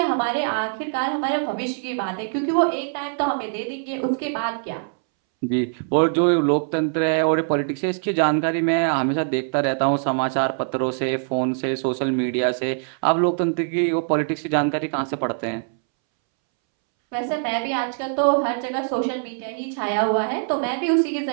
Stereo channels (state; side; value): silent; left; 63 dB below the other